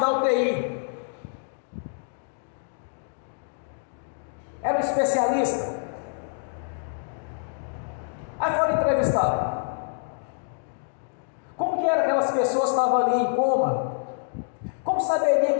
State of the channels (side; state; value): right; silent; digital silence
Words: da UTI. Era um especialista. Aí foram entrevistados. Como que era aquelas pessoas que estavam ali em coma? Como saberia